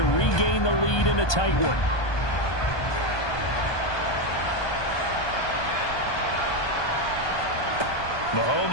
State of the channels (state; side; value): late; right; 1.2 ms